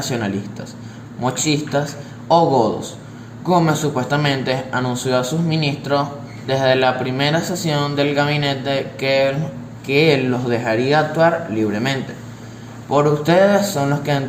mochistas o godos. Gómez supuestamente anunció a sus ministros desde la primera sesión del gabinete que él los dejaría actuar libremente. Por ustedes son los que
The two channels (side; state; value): both; identical; correlation 1.00